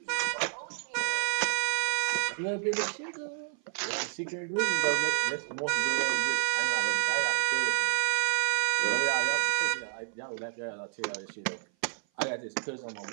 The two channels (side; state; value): left; silent; 56 dB below the other